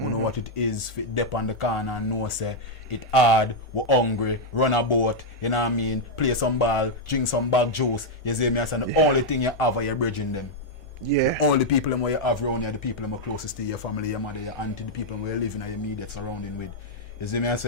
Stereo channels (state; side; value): normal; both; correlation -0.02